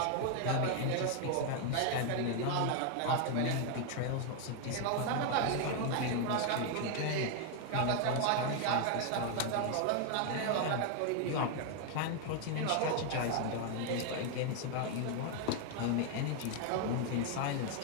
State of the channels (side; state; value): both; different; correlation 0.00